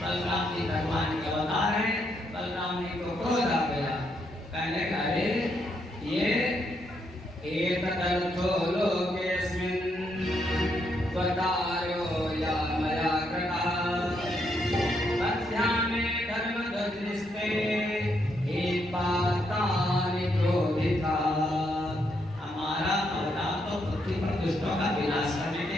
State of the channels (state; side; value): normal; both; correlation 0.77